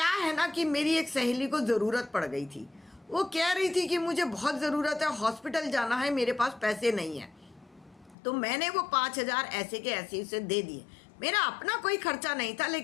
है ना कि मेरी एक सहेली को ज़रूरत पड़ गई थी, वो कह रही थी कि मुझे बहुत ज़रूरत है, हॉस्पिटल जाना है, मेरे पास पैसे नहीं है, तो मैंने वो 5,000 ऐसे के ऐसे उसे दे दिए। मेरा अपना कोई खर्चा नहीं था,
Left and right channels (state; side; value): drops out; right; at 8.2 s